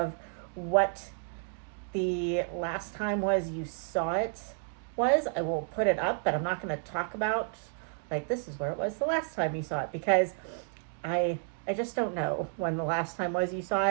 what the last time was you saw it was, I will put it up, but I'm not going to talk about, like, this is where it was the last time you saw it, because I just don't know when the last time was you saw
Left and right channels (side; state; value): left; silent; 57 dB below the other